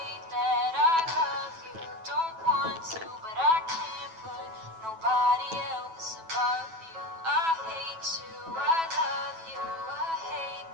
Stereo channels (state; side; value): late; left; 9.1 ms